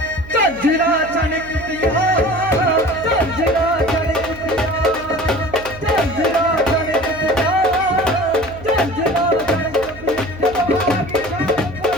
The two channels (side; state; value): right; noise; hum, 17 dB below the sound